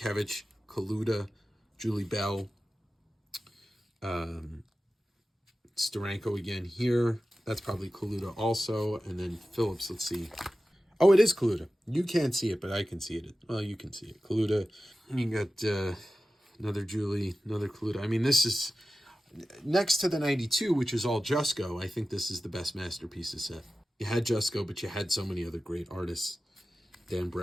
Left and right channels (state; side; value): normal; both; correlation 0.94